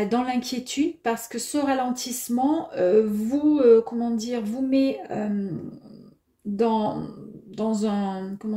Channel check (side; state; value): both; identical; correlation 1.00